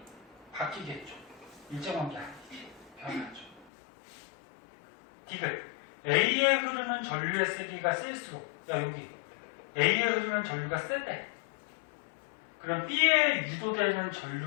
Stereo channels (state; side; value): drops out; right; at 3.7 s